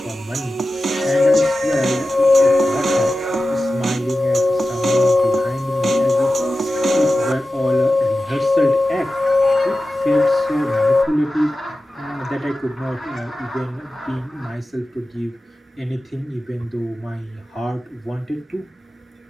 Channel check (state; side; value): normal; both; correlation 0.94